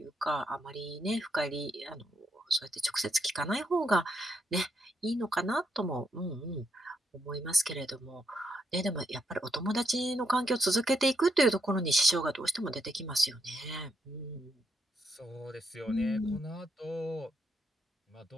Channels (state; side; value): normal; both; correlation 0.78